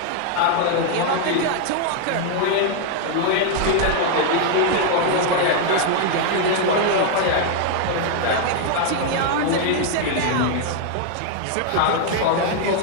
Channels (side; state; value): both; different; correlation 0.00